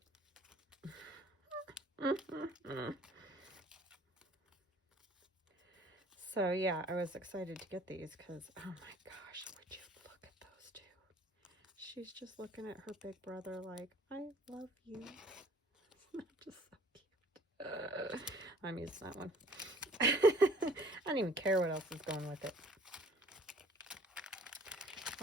So yeah, I was excited to get these because, oh my gosh, would you look at those two? She's just looking at her big brother like, I love you. Just so cute. I'm using that one. I don't even care what else is going with it.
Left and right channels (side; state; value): both; normal; correlation 0.54